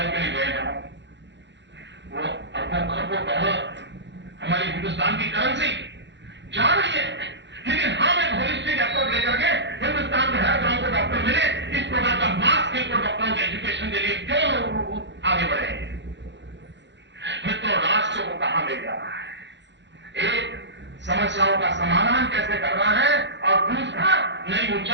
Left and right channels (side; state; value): left; late; 0.52 ms